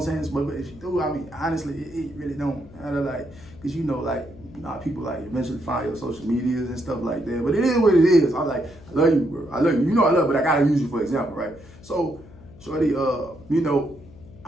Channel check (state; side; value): noise; left; hum, 21 dB below the sound